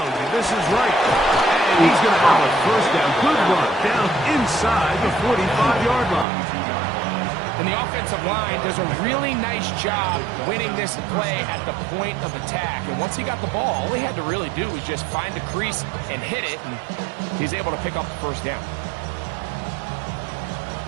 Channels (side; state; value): left; drops out; at 6.2 s